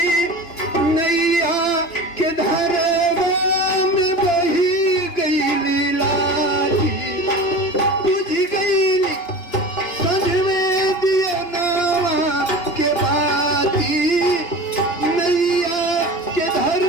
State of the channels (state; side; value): late; right; 3.3 ms